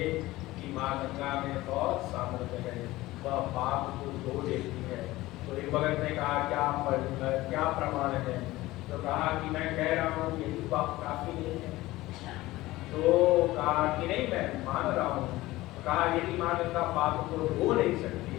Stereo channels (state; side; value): quieter; right; 18.1 dB